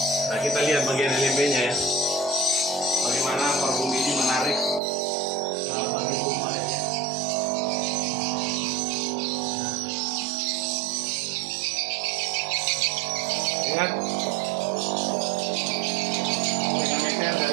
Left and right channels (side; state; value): left; drops out; at 4.8 s